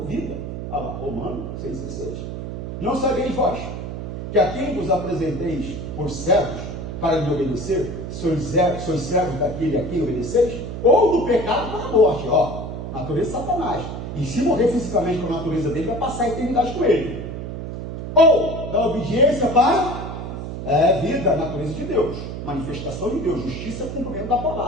vida. Olha lá, Romanos 6,16. Não sabeis vós que a quem vos apresenteis por servos para lhe obedecer, sois servos daquele a quem obedeceis, ou do pecado para a morte, natureza de Satanás. E se morrer fisicamente com a natureza dele, vai passar a eternidade com ele. Ou da obediência para vida, a natureza de Deus, manifestação de Deus, justiça, cumprimento da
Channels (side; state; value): right; noise; hum, 6 dB below the sound